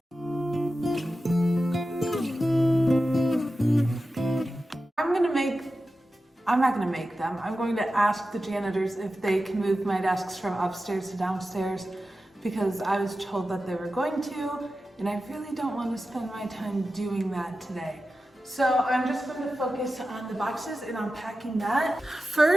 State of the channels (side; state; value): both; normal; correlation 0.93